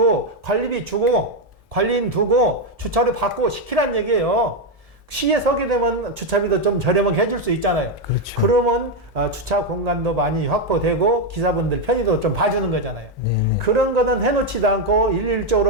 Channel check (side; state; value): both; normal; correlation 0.04